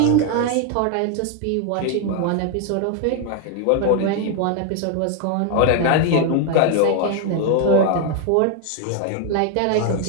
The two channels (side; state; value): both; different; correlation 0.00